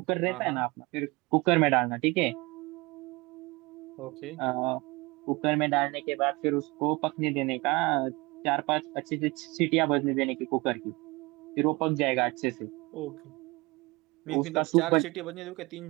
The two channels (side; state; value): left; quieter; 24.3 dB